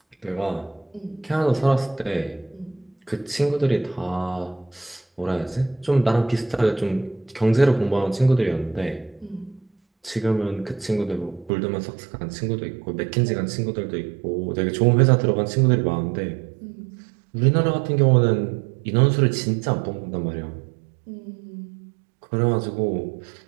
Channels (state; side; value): drops out; left; at 11.5 s